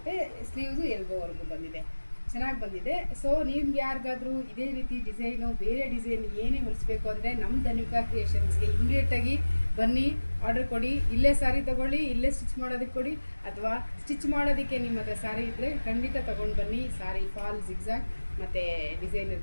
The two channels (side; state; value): both; inverted; correlation -1.00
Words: ಸ್ಲೀವ್ಸು ಎಲ್ಬೋವರೆಗೂ ಬಂದಿದೆ, ಚೆನ್ನಾಗಿ ಬಂದಿದೆ. ಸೊ ನಿಮ್ಗೆ ಯಾರಿಗಾದರೂ ಇದೇ ರೀತಿ ಡಿಸೈನು, ಬೇರೆ ಡಿಸೈನ್ ಏನೇ ಹೊಲಿಸ್ಬೇಕು ಅಂದರೆ ನಮ್ಮ ಧನ್ವಿಕಾ ಕ್ರಿಯೇಷನ್ಸ್ಗೆ ಇಮಿಡಿಯೇಟಾಗಿ ಬನ್ನಿ, ಆರ್ಡರ್ ಕೊಡಿ. ಇಲ್ಲೇ ಸಾರಿ ತೊಗೊಳ್ಳಿ, ಇಲ್ಲೇ ಸ್ಟಿಚ್ ಮಾಡೋದಕ್ಕೆ ಕೊಡಿ, ಅಥವಾ ಸ್ಟಿಚ್ ಮಾಡೋದಕ್ಕೆ ನಿಮ್ಮ ಹತ್ರ ಸಾರಿ ಇದ್ದರೆ ಖಂಡಿತ ತೊಗೊಂಡು ಬನ್ನಿ. ಸಾರಿ ಫಾಲ್, ಜಿಗ್ಜಾಗ್ ಮತ್ತು ಡಿಸೈನರ್